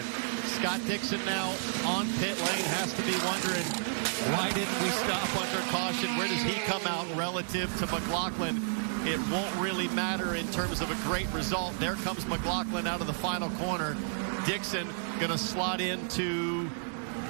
Scott Dixon now on pit lane has to be wondering, why didn't we stop under caution? Where does he come out relative to McLaughlin? It won't really matter in terms of a great result. There comes McLaughlin out of the final corner. Dixon going to slot into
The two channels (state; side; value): silent; left; digital silence